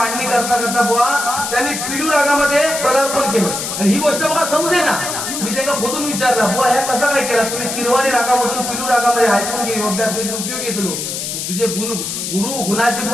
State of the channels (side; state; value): left; noise; hiss, 4 dB below the sound